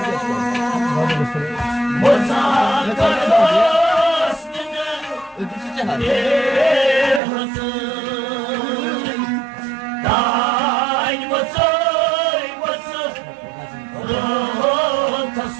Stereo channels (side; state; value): left; drops out; at 7.2 s